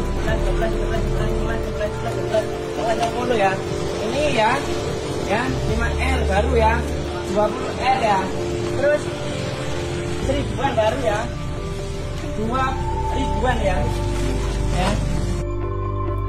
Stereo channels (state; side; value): identical; both; correlation 1.00